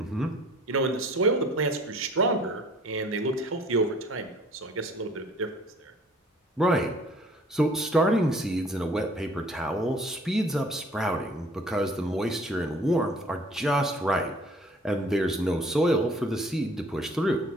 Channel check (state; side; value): normal; both; correlation 0.54